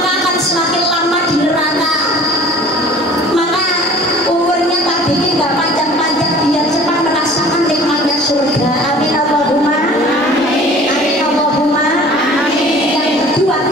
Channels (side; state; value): both; normal; correlation 0.47